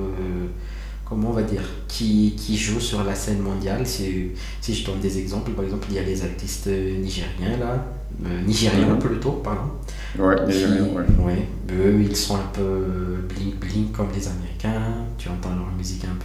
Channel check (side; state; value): both; identical; correlation 1.00